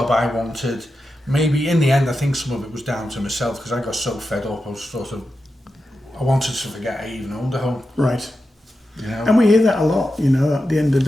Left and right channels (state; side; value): normal; both; correlation 0.90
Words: I wanted. Maybe in the end, I think some of it was down to myself because I got so fed up. I wanted to forget I even owned a home. Right. You know? And we hear that a lot, at the end of